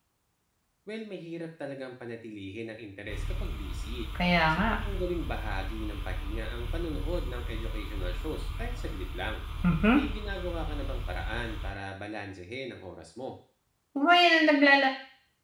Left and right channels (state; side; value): identical; both; correlation 1.00